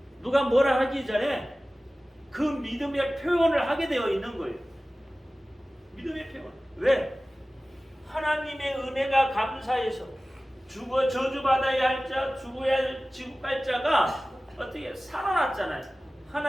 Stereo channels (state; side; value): normal; both; correlation 0.97